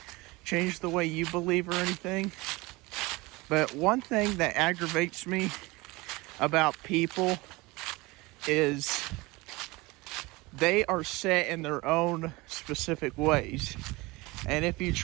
change the way you believe or anything. But one thing that aggravates me about people is they are set in their own specific ways. And if you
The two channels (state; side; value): quieter; left; 22.9 dB